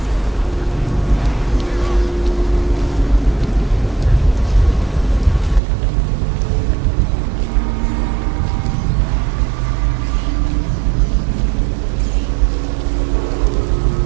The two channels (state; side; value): drops out; left; at 5.6 s